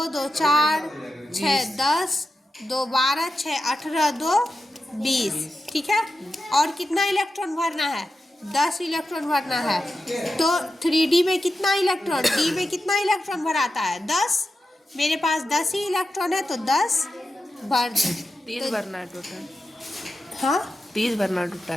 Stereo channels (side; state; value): both; normal; correlation 0.90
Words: 2 4 6 10 2 12 6 18 2 20, ठीक है। और कितना इलेक्ट्रॉन भरना है 10 इलेक्ट्रॉन भरना है, तो 3d में कितना इलेक्ट्रॉन, d में कितना इलेक्ट्रॉन भराता है 10, मेरे पास 10 ही इलेक्ट्रॉन है, तो 10 भर दे। 30 भरना है टोटल, हाँ 30 भरना